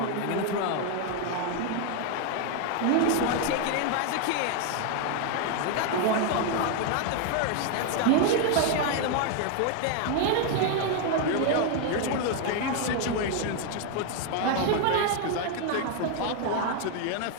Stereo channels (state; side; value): different; both; correlation 0.01